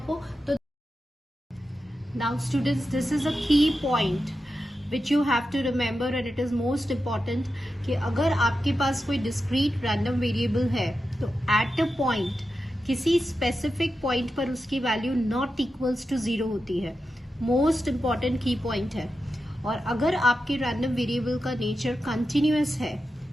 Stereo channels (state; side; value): normal; both; correlation 0.90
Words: तो नाउ स्टूडेंट्स, दिस इज अ की point which you have to remember and it is most important कि अगर आपके पास कोई discrete random variable है तो at a point किसी specific point पर उसकी value not equals to 0 होती है. most important key point है. और अगर आपके random variable का nature continuous है